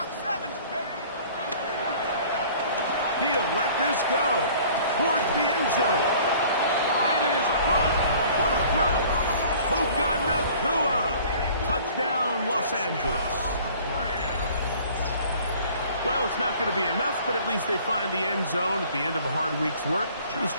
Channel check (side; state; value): both; inverted; correlation -0.51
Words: 70, baby. He'll let this go towards the end zone. That is caught. What a throw. Puka Nacua. Touchdown, Los Angeles. Well, it's not going to be enough, but at least they find the end zone at the end of a hard week's work. This